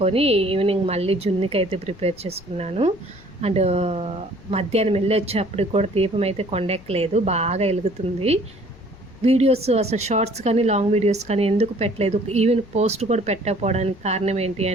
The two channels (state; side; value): noise; left; rumble, 23 dB below the sound